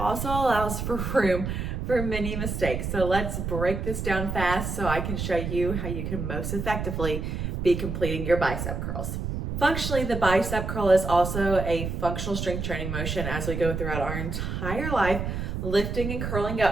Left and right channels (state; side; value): noise; right; rumble, 4 dB below the sound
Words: allows for room for many mistakes. So let's break this down fast so I can show you how you can most effectively be completing your bicep curls. Functionally, the bicep curl is also a functional strength training motion as we go throughout our entire life, lifting and curling